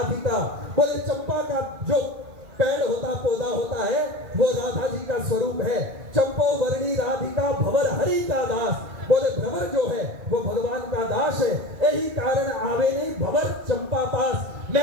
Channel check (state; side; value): late; left; 2.3 ms